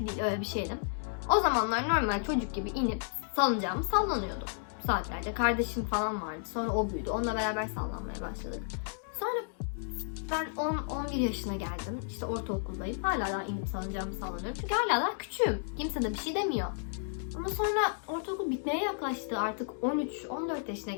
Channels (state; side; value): silent; right; digital silence